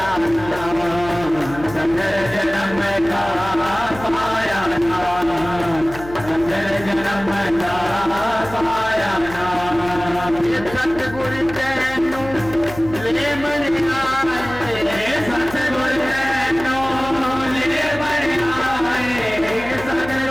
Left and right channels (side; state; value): left; noise; hum, 14 dB below the sound